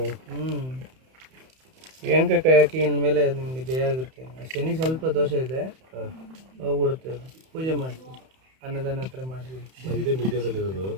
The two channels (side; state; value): left; late; 31 ms